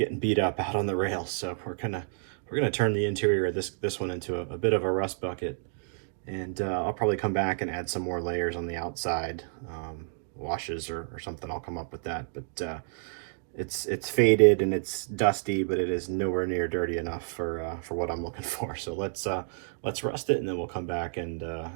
beat up out on the rails. So we're gonna turn the interior of this one into a bit of a rust bucket. And I'll probably come back and add some more layers on the outside, washes or something. I'll come up with that. But it's faded and it's dusty, but it is nowhere near dirty enough for what I'm looking for. So let's rust it, and then we'll come back and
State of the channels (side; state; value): left; silent; 58 dB below the other